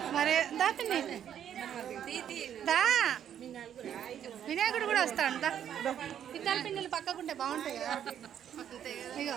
మరి దాపిని దా వినాయకుడు కూడా వస్తాడు దా ఇద్దరు పిన్నెలు పక్కకుంటే బాగుంటాయి కదా ఇగో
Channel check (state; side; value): quieter; left; 9.6 dB